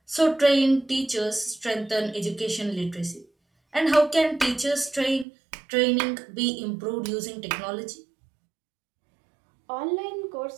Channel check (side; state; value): left; drops out; at 5.2 s